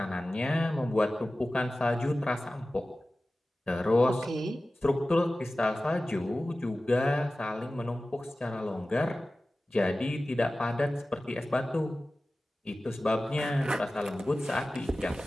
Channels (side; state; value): both; normal; correlation 0.96